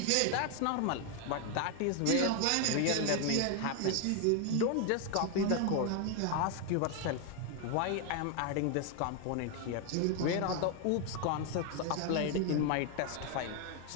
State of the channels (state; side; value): different; both; correlation 0.01